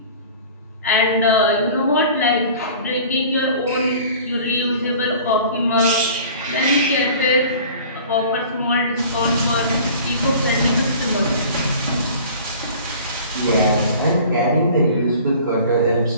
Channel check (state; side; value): inverted; both; correlation -0.44